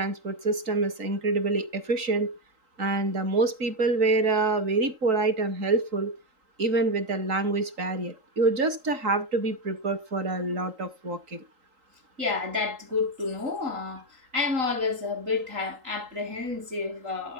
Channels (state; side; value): late; left; 3.8 ms